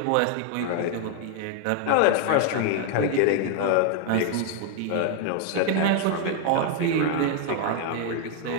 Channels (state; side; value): different; both; correlation 0.00